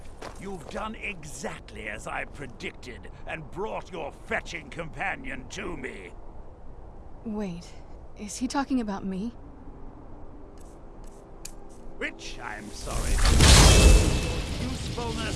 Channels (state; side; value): identical; both; correlation 1.00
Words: You've done exactly as I predicted and brought your fetching companion to me. Wait, is he talking about me? Which, I'm sorry, your